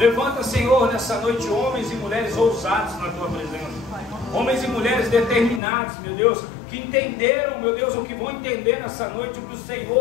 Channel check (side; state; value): right; drops out; at 5.6 s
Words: Senhor, nessa noite homens e mulheres ousados na tua presença. Homens e mulheres determinados, meu Deus, que entenderam, meu Deus, o que vão entender nessa noite, o que o